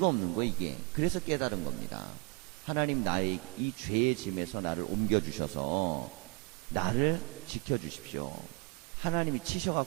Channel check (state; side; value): quieter; left; 31.1 dB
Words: 없는 거 이게. 그래서 깨달은 겁니다. 하나님 나의 이 죄의 짐에서 나를 옮겨주셔서 나를 지켜주십시오. 하나님이